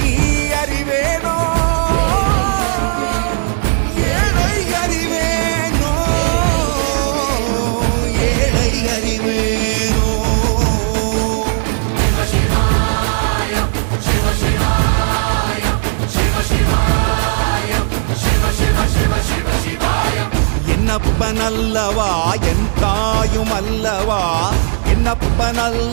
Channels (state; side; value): silent; left; 61 dB below the other